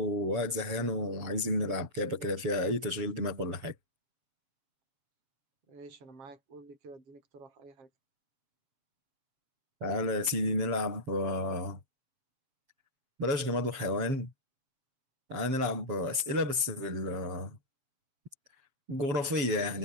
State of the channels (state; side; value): late; left; 7.3 ms